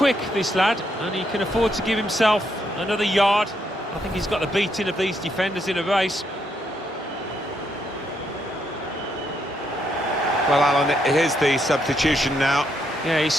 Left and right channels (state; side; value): normal; both; correlation 0.76